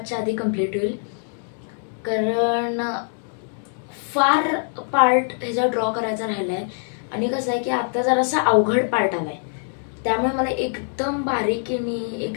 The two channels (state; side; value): silent; right; 59 dB below the other